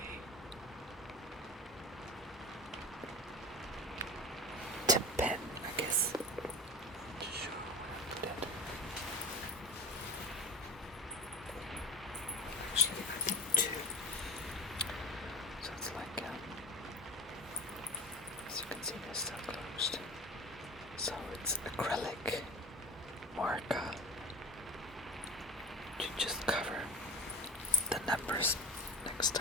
tip pen, I guess, to show that. Actually, I think two. So it's like, as you can see, they're still closed. So it's acrylic marker to just cover the numbers next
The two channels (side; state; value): both; normal; correlation 0.34